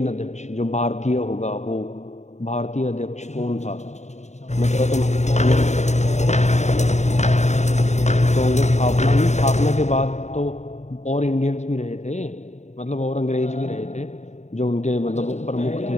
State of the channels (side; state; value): right; late; 0.33 ms